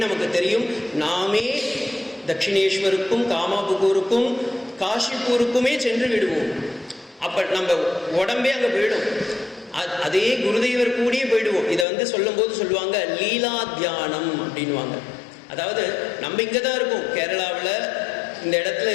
நமக்கு தெரியும். நாமே தட்சிணேஸ்வருக்கும் காமாபுகூருக்கும் காஷிப்பூருக்குமே சென்று விடுவோம். அப்போ நம்ம உடம்பே அங்கே போயிடும். அதே குருதேவர் கூடியே போயிடுவோம். இதை சொல்லும்போது சொல்லுவாங்க லீலா தியானம் அப்படின்வாங்க. அதாவது நம்ம இங்கே தான் இருக்கோம், கேரளாவில் இந்த இடத்துல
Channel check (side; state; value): right; drops out; at 11.9 s